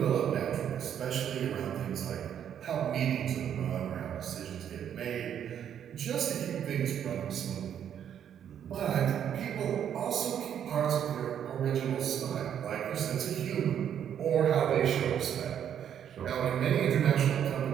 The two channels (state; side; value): quieter; left; 9.3 dB